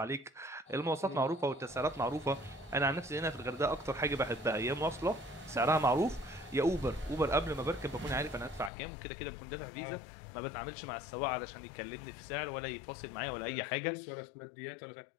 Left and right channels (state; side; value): drops out; right; at 8.7 s